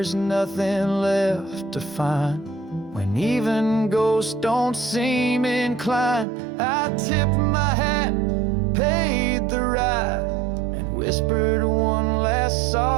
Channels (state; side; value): drops out; left; at 6.2 s